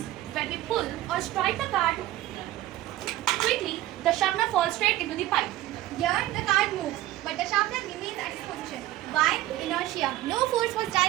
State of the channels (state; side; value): quieter; left; 15.3 dB